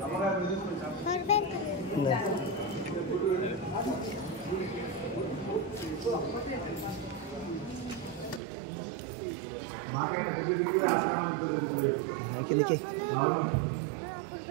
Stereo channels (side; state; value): left; drops out; at 8.4 s